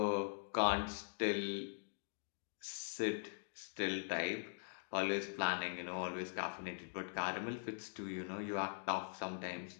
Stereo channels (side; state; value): right; silent; digital silence